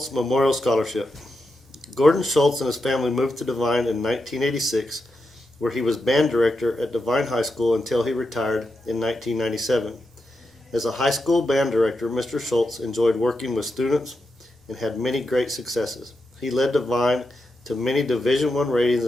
Memorial Scholarship. Gordon Shultz and his family moved to Devine in 1986, where he was band director at Devine High School until he retired in 1997. As a high school band director, Mr. Shultz enjoyed working with students and had many great successes. He led Devine to many Division I ratings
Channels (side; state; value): both; normal; correlation 0.87